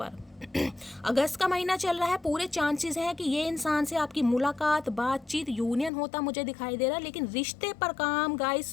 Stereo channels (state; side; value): drops out; right; at 5.9 s